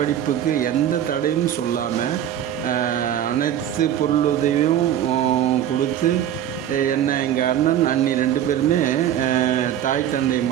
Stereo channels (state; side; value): quieter; left; 10.6 dB